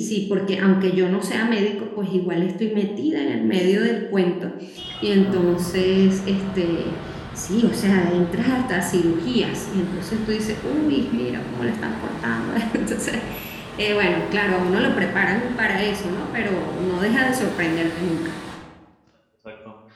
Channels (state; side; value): identical; both; correlation 1.00